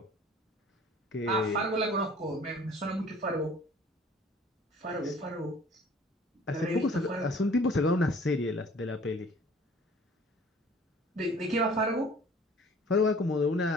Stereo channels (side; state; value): both; normal; correlation 0.51